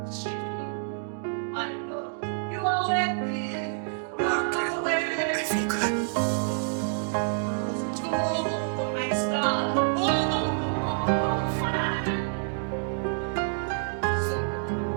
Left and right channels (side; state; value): left; silent; digital silence